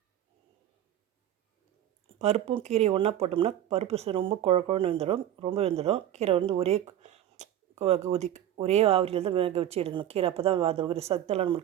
பருப்பும் கீரையும் ஒன்றா போட்டோம்னா பருப்பு ரொம்ப குழன்னு வெந்துடும், ரொம்ப வெந்துடும். கீரை ஒரே ஆவிரியில் தான் வேக வச்சு எடுக்கணும். கீரை அப்போ தான் அது ஒரு சத்தெல்லாம்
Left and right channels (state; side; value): quieter; left; 11.5 dB